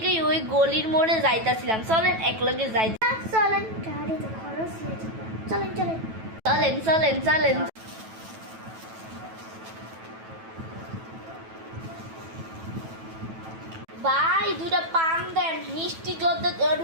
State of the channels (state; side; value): late; left; 9.1 ms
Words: ওই গলির মোড়ে যাইতাছিলাম। চলেন একলগে যাই। চলেন, গাড়িতে খরচ হয়ে যাবে। চলেন চলেন চলেন চলেন চলেন। ভাই দুটা পান দেন, মিষ্টি জর্দা